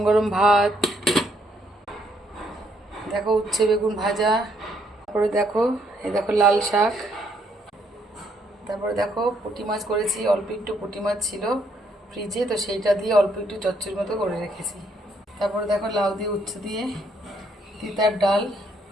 গরম ভাত, দেখো উচ্ছে বেগুন ভাজা, তারপরে দেখো এই দেখো লাল শাক, তারপরে দেখো পুঁটি মাছ করেছি। অল্প একটু পুঁটি মাছ ছিল ফ্রিজে, তো সেইটা দিয়ে অল্প একটু চচ্চড়ির মতো করে রেখেছি। তারপরে দেখো লাউ দিয়ে উচ্ছে দিয়ে তিতার ডাল,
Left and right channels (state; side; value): normal; both; correlation 0.71